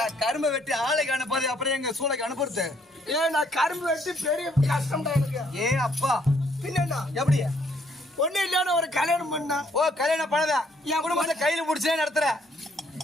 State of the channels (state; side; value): normal; both; correlation 0.67